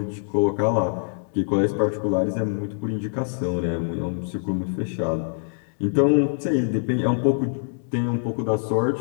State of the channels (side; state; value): right; silent; digital silence